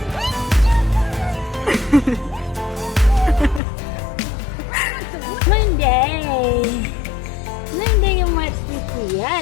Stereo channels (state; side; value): drops out; right; at 3.6 s